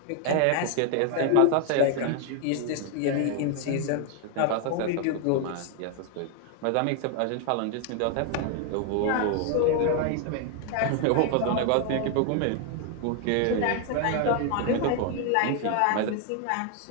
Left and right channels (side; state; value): both; different; correlation 0.00